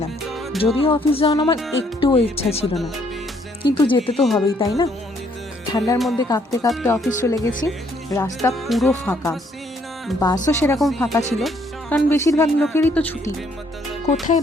যদিও অফিস যাওয়ার আমার একটুও ইচ্ছা ছিল না, কিন্তু যেতে তো হবেই, তাই না? ঠান্ডার মধ্যে কাঁপতে কাঁপতে অফিস চলে গেছি। রাস্তা পুরো ফাঁকা, বাসও সেরকম ফাঁকা ছিল, কারণ বেশিরভাগ লোকেরই তো ছুটি। কোথায়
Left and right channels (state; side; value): normal; both; correlation 0.67